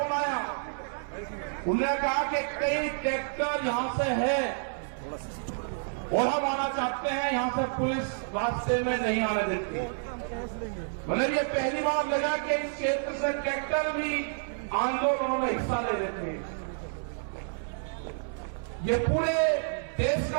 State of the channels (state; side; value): silent; left; digital silence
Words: आया। उन्होंने कहा कि कई ट्रैक्टर यहां से है और हम आना चाहते हैं, यहां से पुलिस रास्ते में नहीं आने देती। मतलब ये पहली बार लगा कि इस क्षेत्र से ट्रैक्टर भी आंदोलन में हिस्सा ले लेते हैं। ये पूरे देश